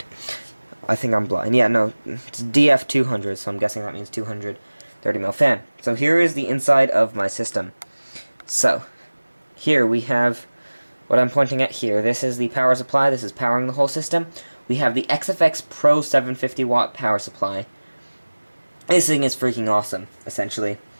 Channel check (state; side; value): inverted; both; correlation -1.00